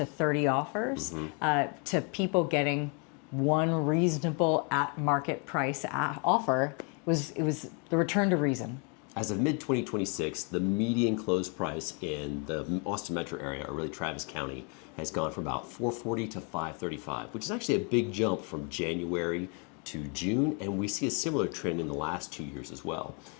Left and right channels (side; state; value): right; quieter; 35.7 dB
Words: 30 offers to people getting one reasonable at market price offer. It was the return to reason. As of mid-2026, the median close price in the Austin metro area, or really Travis County, has gone from about $440 to $535, which is actually a big jump from January to June, and we see a similar trend in the last 2 years as well.